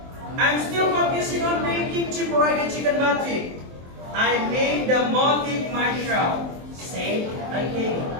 I'm still focusing on making Ciparaga chicken batik. I made the motif myself, said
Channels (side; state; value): left; late; 23 ms